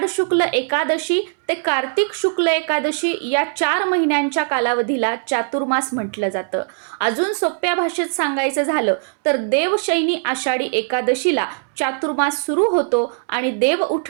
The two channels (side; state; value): left; silent; 64 dB below the other